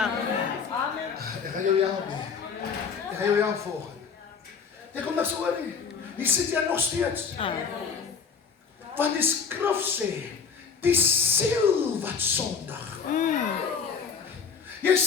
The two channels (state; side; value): quieter; right; 6.0 dB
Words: Ek gaan jou help nie. Ek gaan jou help volgende. Jy kom niks oor nie. Nie sit jy nog steeds. Want die skrif sê, die siel wat sondig. Jy